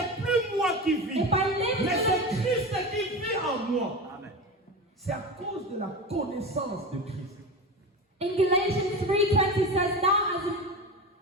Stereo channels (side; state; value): both; normal; correlation 0.26